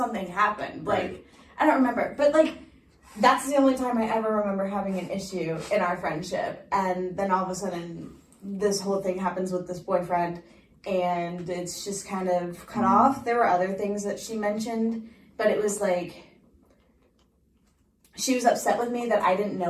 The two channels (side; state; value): both; identical; correlation 1.00